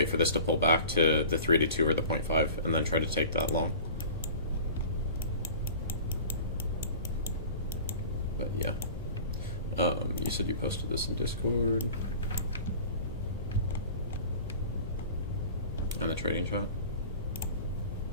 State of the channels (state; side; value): inverted; both; correlation -0.40